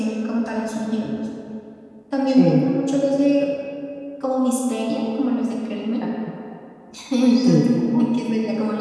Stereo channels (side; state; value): both; identical; correlation 1.00